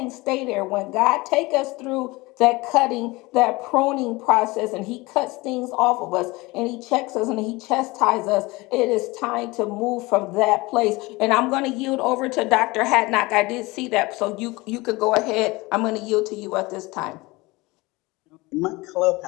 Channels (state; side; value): quieter; right; 22.7 dB